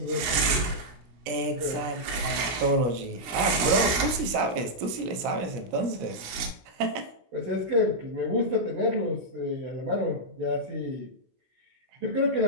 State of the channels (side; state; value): left; late; 17 ms